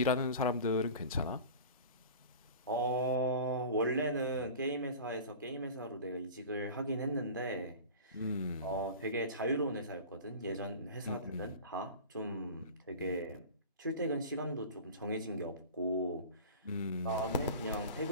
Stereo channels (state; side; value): inverted; both; correlation -0.37